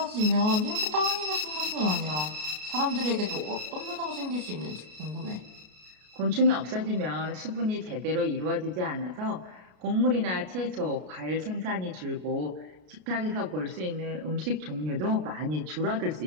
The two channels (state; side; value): late; left; 33 ms